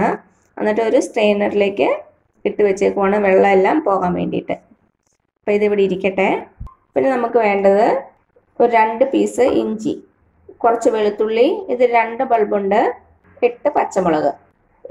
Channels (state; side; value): identical; both; correlation 1.00